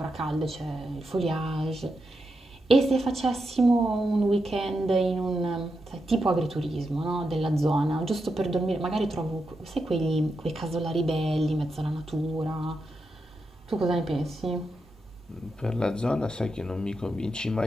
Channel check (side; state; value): both; normal; correlation 0.86